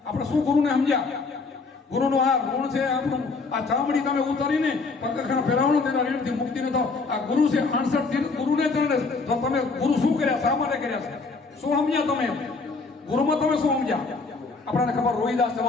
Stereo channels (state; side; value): quieter; right; 4.1 dB